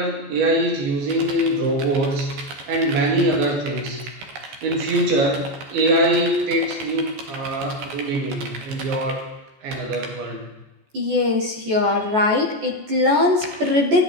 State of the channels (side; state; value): left; late; 14 ms